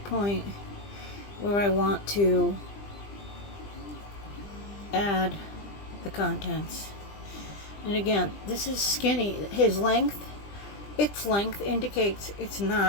point where I want to add the contents. And again, this is skinny. Its length indicates it's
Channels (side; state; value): right; late; 20 ms